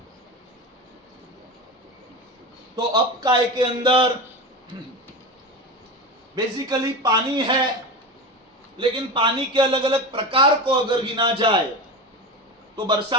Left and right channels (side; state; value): both; normal; correlation 0.24